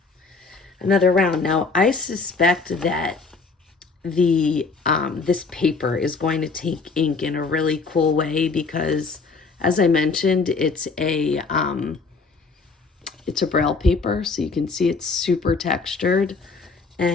another round. Now, I suspect that the this paper is going to take ink in a really cool way because, as I mentioned, it's a Braille paper, so you can see it's super textured.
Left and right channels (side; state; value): right; quieter; 4.3 dB